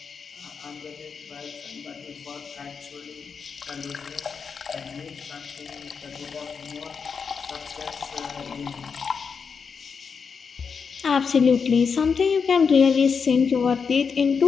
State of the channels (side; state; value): right; quieter; 5.8 dB